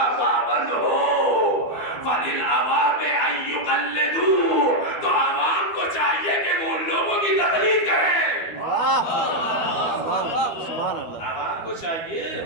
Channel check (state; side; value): late; right; 12 ms